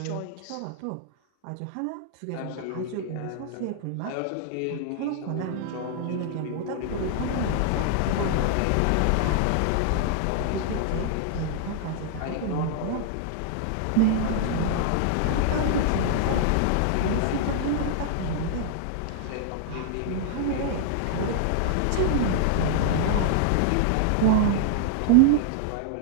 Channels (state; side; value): different; both; correlation -0.01